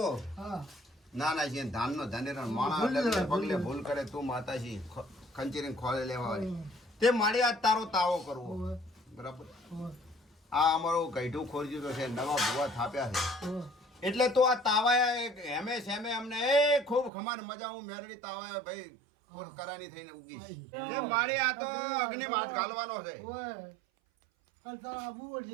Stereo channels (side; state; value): left; drops out; at 17.1 s